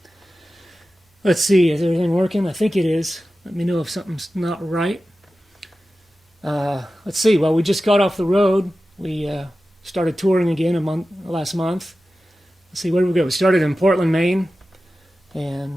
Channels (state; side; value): normal; both; correlation 0.94